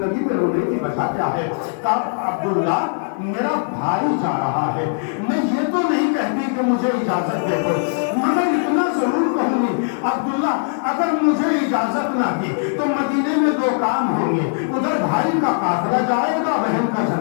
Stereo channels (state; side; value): silent; right; 66 dB below the other